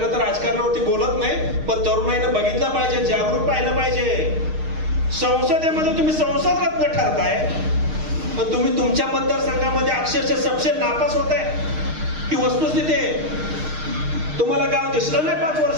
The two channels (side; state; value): left; late; 6.5 ms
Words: तर राजकारणावरती बोलत नाही, पण तरुणाईनं बघितलं पाहिजे, जागरूक पाहिलं पाहिजे. संसदेमध्ये तुम्ही संसद रत्न ठरताय, पण तुम्ही तुमच्या मतदारसंघामध्ये अक्षरशः सपशेल नापास होताय. ही वस्तुस्थिती आहे. तुम्हाला गाव दिसलं नाही 5